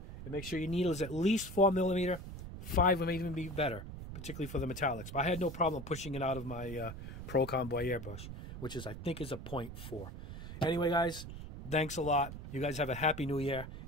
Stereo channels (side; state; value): right; noise; rumble, 10 dB below the sound